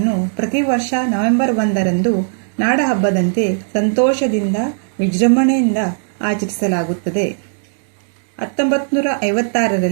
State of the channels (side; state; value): left; silent; digital silence